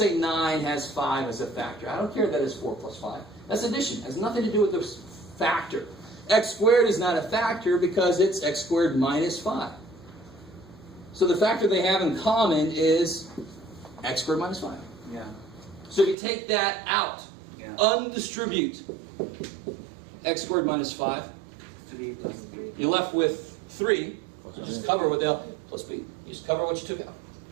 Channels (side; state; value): left; drops out; at 16.2 s